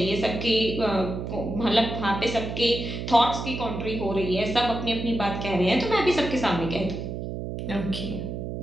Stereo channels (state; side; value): noise; right; hum, 5 dB below the sound